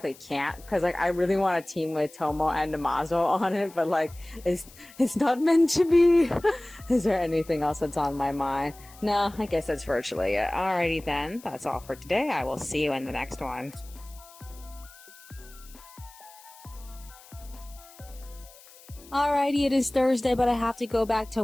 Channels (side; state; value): left; noise; hiss, 22 dB below the sound